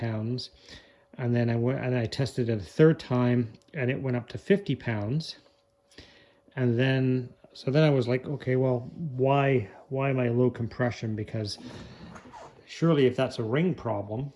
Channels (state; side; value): identical; both; correlation 1.00